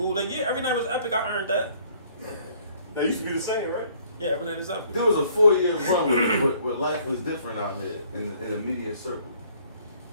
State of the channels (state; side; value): inverted; both; correlation -0.61